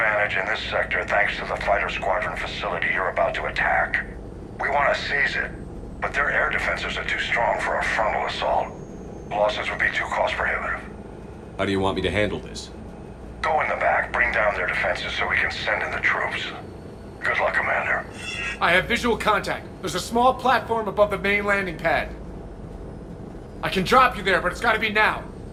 advantage in this sector thanks to the fighter squadron facility you're about to attack. We want to seize it, but their air defenses are too strong for a frontal assault. Losses would be too cost prohibitive. How do you want me to handle this? Go in the back, bring down their defenses so we can send in the troops. Good luck, Commander. I have visual contact. There's a small platform above the main landing pad. I can drop you there, but it's gotta be now.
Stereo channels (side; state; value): both; identical; correlation 1.00